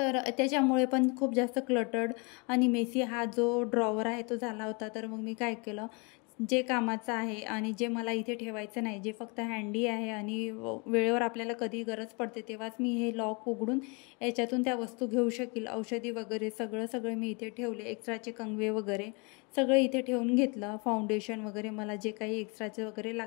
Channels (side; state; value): right; quieter; 31.6 dB